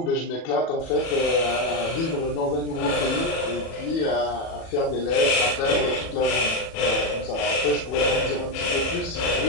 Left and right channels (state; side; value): late; right; 37 ms